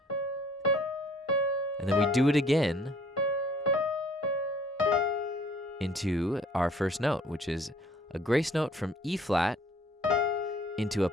And then we do it again into our first note, which is a grace note from E flat into a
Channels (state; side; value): normal; both; correlation 0.57